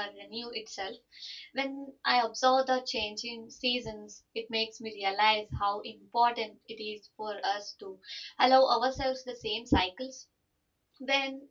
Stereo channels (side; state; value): both; identical; correlation 1.00